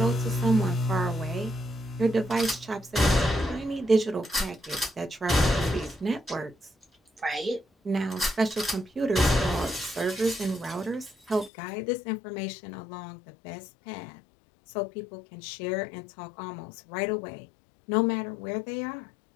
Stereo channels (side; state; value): right; drops out; at 11.5 s